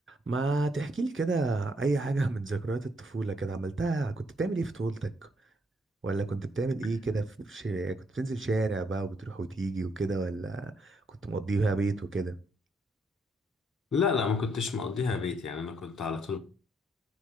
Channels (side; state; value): both; normal; correlation 0.73